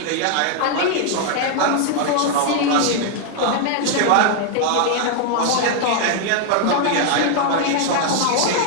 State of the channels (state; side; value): different; both; correlation 0.00